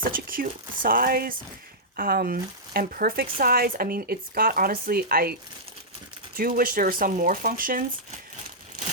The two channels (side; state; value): both; normal; correlation -0.12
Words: such a cute size, and perfect size. I mean, it's got, honestly, I do wish there were some more functions.